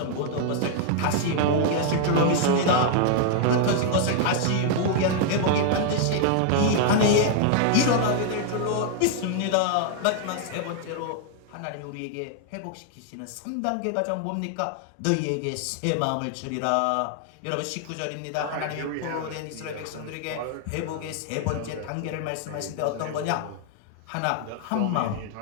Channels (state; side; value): different; both; correlation 0.00